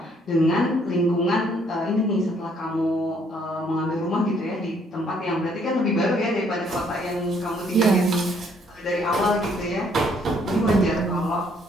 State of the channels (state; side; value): normal; both; correlation 0.66